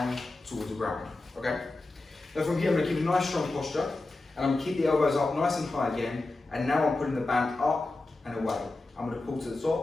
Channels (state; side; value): quieter; right; 3.1 dB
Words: towards the ground, okay? Now from here, I'm going to keep a nice strong posture, and I'm going to keep the elbows up nice and high again, and now I'm putting the band up and away. I'm going to pull to the